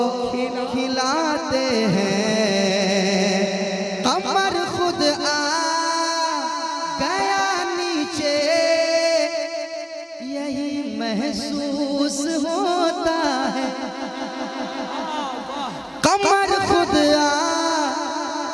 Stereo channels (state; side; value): identical; both; correlation 1.00